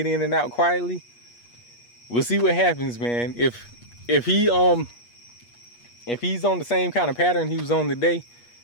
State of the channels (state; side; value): late; right; 8.4 ms